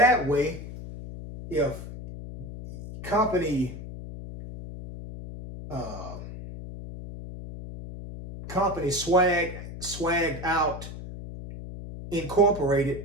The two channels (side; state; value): left; noise; hum, 11 dB below the sound